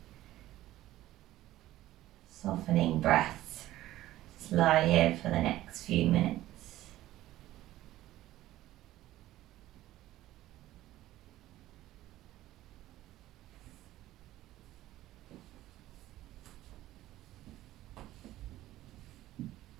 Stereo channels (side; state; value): left; quieter; 15.0 dB